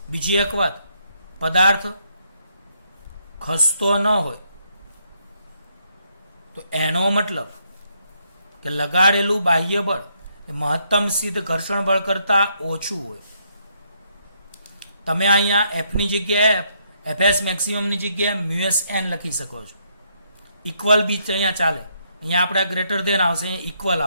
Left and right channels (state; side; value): inverted; both; correlation -0.74